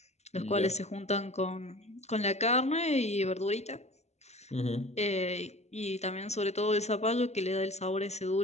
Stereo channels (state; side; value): late; right; 0.32 ms